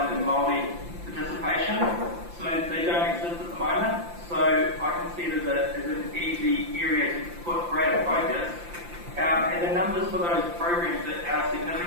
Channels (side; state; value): left; late; 5.8 ms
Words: and Māori participation. So they don't exist at the moment. So I can see it as an easy area to put greater focus. And the numbers for those programs are